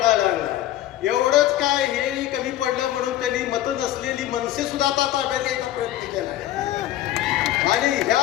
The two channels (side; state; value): right; quieter; 13.5 dB